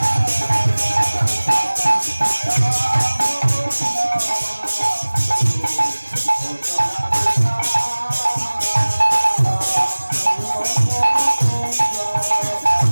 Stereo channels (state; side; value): inverted; both; correlation -1.00